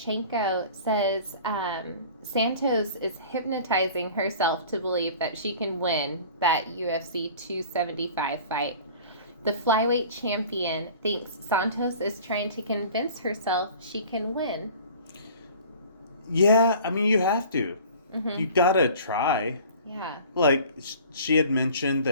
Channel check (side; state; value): both; inverted; correlation -0.45